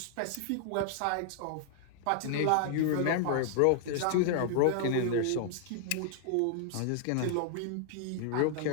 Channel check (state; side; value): different; both; correlation -0.01